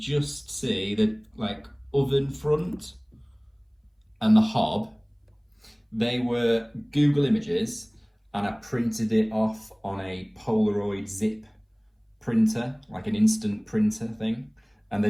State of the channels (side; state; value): both; identical; correlation 1.00